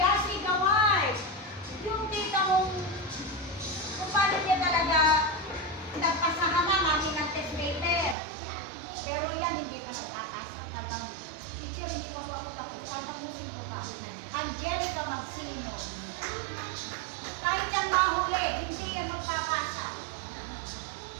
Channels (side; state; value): left; drops out; at 8.2 s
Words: award. Yung tita mong kung paano niya talaga nagpasahan na mami ng test paper. Pero yan, hindi pa nakakasa. Talagang, teacher, hindi pa ako tapos. Sana mo sino pa. Angelica Magsino. Kahit yan mahuli, hindi yan magpapasa.